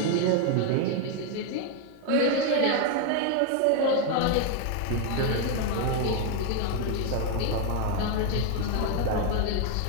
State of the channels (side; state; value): both; different; correlation 0.01